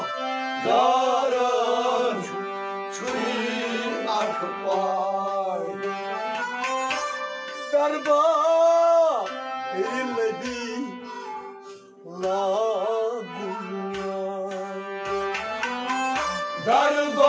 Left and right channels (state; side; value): identical; both; correlation 1.00